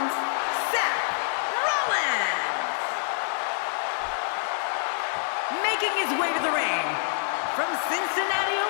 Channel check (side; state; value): right; silent; digital silence